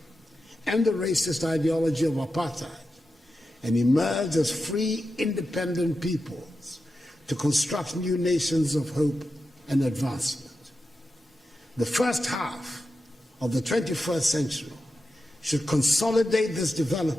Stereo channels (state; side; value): normal; both; correlation 0.90